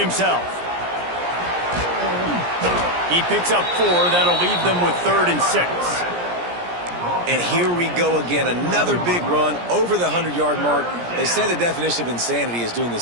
He picks up 4. That'll leave them with 3rd and 6. And here we go again. Another big run over the 100-yard mark. They say the definition of insanity is doing the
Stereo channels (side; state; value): left; late; 17 ms